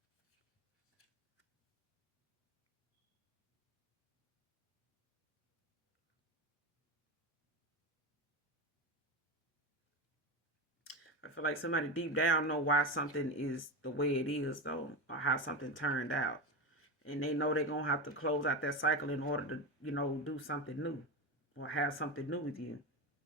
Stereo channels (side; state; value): both; normal; correlation 0.19